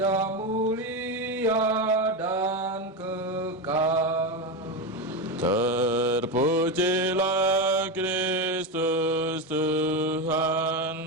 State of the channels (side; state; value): both; normal; correlation 0.14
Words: mulia dan kekal. Terpujilah Kristus